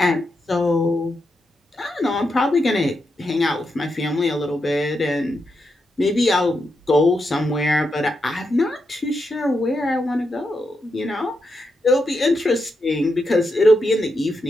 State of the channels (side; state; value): both; normal; correlation 0.85